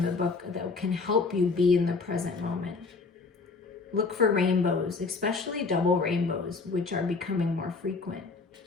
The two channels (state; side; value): quieter; right; 4.3 dB